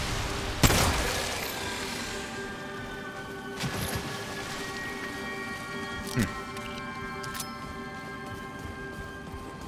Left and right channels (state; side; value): identical; both; correlation 1.00